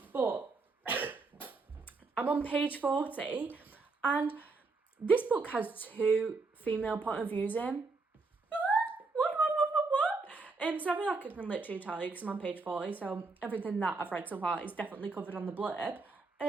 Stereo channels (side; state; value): left; quieter; 3.9 dB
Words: But I'm on page 40, and this book has 2 female point of views in. What? So I feel like I can literally tell you because I'm on page 40, so everything that I've read so far is definitely covered on the blurb.